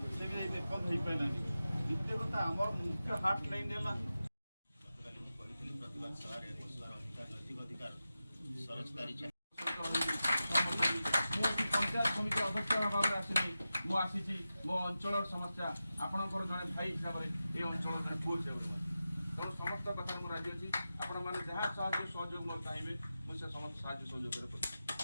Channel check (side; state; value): both; inverted; correlation -0.93